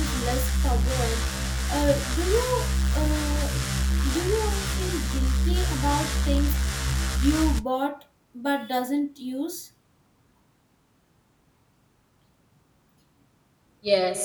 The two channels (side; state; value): both; identical; correlation 1.00